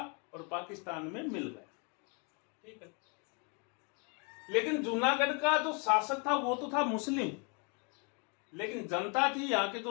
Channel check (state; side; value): quieter; right; 34.9 dB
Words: और पाकिस्तान में मिल गया। ठीक है, लेकिन जूनागढ़ का जो शासक था वो तो था मुस्लिम, लेकिन जनता थी, यहाँ के